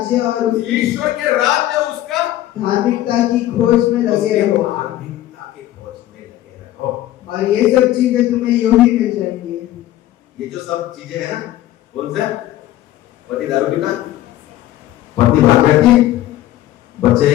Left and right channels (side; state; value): right; quieter; 13.9 dB